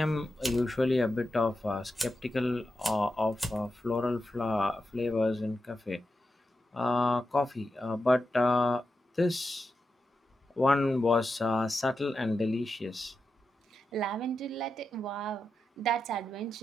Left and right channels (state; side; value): normal; both; correlation 0.89